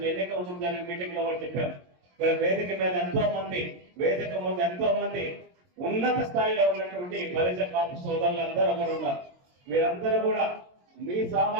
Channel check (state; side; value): late; left; 22 ms